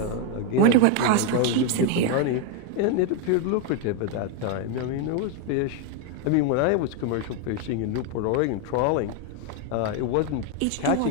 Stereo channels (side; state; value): both; different; correlation 0.01